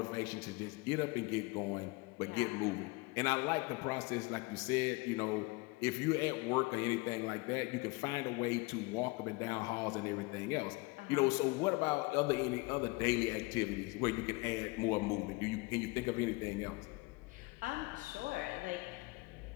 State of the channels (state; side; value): quieter; right; 24.8 dB